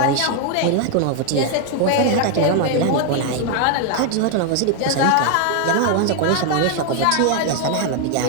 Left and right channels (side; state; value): both; different; correlation 0.00